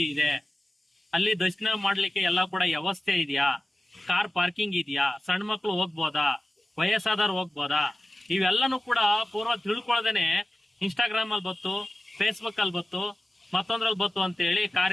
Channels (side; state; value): both; normal; correlation 0.95